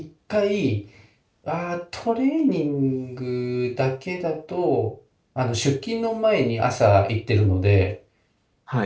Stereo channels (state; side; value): identical; both; correlation 1.00